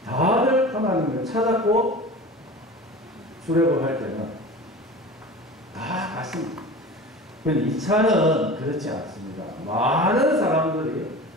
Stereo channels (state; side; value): normal; both; correlation 0.36